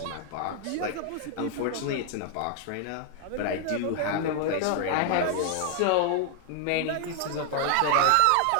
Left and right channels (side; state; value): both; different; correlation 0.00